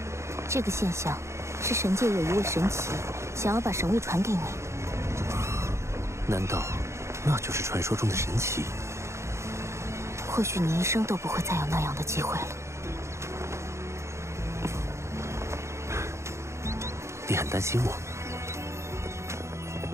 这个现象是神界有一位神奇想要把神位传给你。难道那就是传说中的神奇？或许你一生都不会再有那样的机会了。你很担心我？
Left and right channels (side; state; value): left; late; 0.14 ms